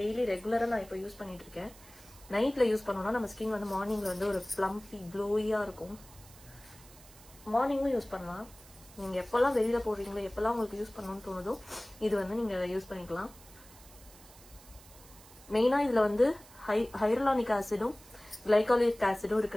ரெகுலரா நான் இப்போ யூஸ் பண்ணிட்டு இருக்கேன். நைட்ல யூஸ் பண்ணோம்னா நம்ம ஸ்கின் வந்து மார்னிங்ல வந்து ஒரு பிளம்பி க்ளோயியா இருக்கும். மார்னிங்கும் யூஸ் பண்ணலாம். நீங்க எப்பெல்லாம் வெளியில போடுறீங்களோ, எப்பெல்லாம் உங்களுக்கு யூஸ் பண்ணணும்னு தோணுதோ இது வந்து நீங்க யூஸ் பண்ணிக்கலாம். மெயினா இதுல வந்து ஹைரலானிக் ஆசிடும் கிளைகாலிக் ஆசிடும்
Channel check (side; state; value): right; noise; hiss, 22 dB below the sound